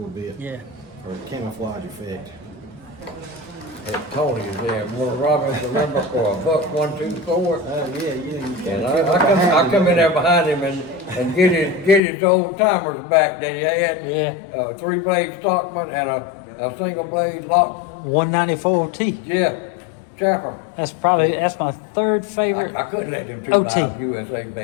bit, Yeah. or camouflage effect. And Tony is there, one Robin, remember, for $1.24. Oh yeah, you And I come in there behind him and get his old timers back that he had. Yeah. 3-blade Stockman and a single blade lock. 194 T. Yeah, Chapel. That's my third favorite. I couldn't let them two OT. knives USA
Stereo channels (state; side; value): drops out; right; at 12.0 s